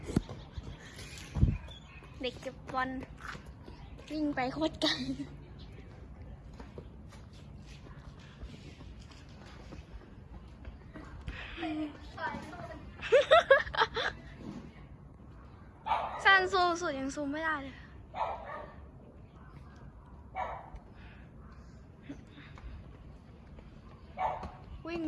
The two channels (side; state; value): both; identical; correlation 1.00